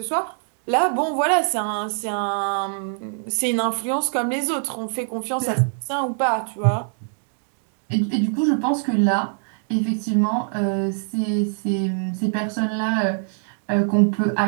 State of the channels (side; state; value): left; silent; digital silence